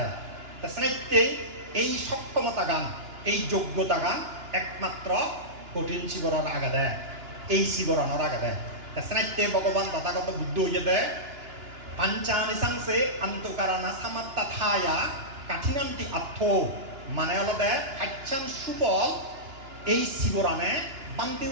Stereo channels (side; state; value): left; late; 2.9 ms